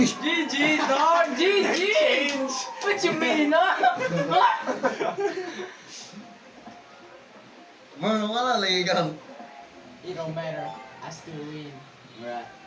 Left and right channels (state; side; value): identical; both; correlation 1.00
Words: GG, dog! GG! Change. What you mean, huh? Wala lagi ka. It don't matter. I still win. Right.